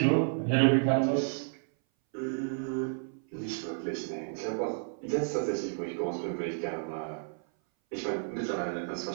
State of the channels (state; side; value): silent; left; 57 dB below the other